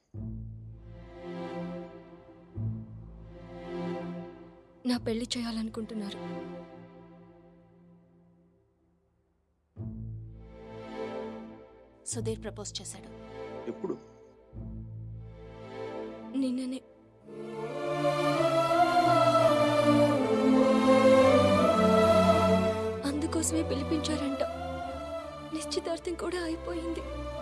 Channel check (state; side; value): identical; both; correlation 1.00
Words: నా పెళ్లి చేయాలనుకుంటున్నారు. సుధీర్ ప్రపోజ్ చేశాడు. ఎప్పుడు? నిన్ననే. అందుకోసమే పిలిపించారంట. నిశ్చితార్థం కూడా అయిపోయింది.